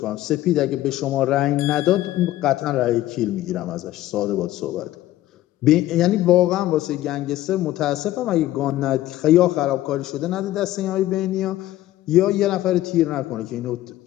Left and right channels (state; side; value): quieter; right; 14.9 dB